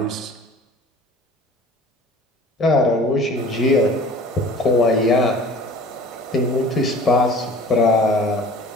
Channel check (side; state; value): both; normal; correlation 0.45